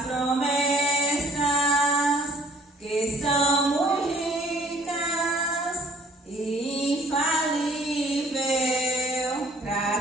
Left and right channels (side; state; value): both; normal; correlation 0.57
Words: promessas, que são muito ricas e infalível